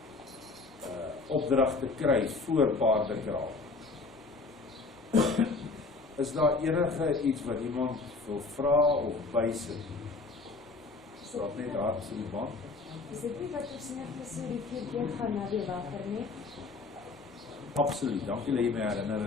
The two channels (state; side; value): quieter; right; 3.8 dB